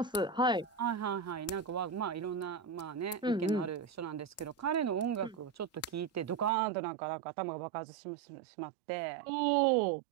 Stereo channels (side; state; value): left; drops out; at 6.5 s